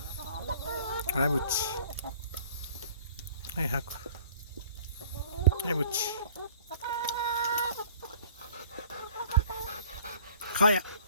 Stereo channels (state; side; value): inverted; both; correlation -0.52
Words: はい、ぶっち。はい、吐く。はい、ぶっち。かや。